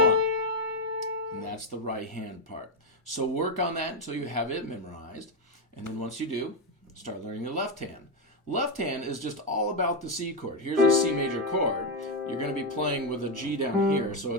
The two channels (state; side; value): normal; both; correlation 0.06